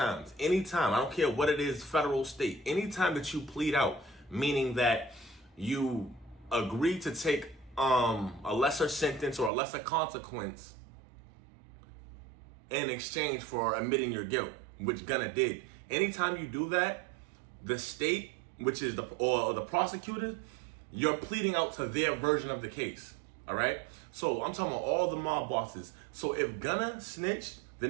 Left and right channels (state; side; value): drops out; left; at 9.5 s